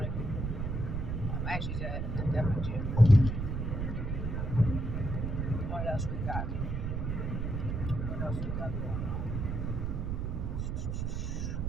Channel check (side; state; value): right; noise; rumble, 1 dB below the sound